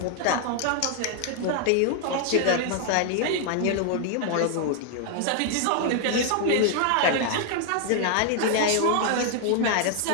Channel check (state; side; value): different; both; correlation 0.00